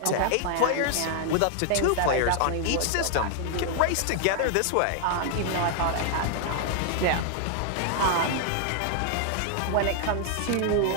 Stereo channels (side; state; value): both; different; correlation 0.00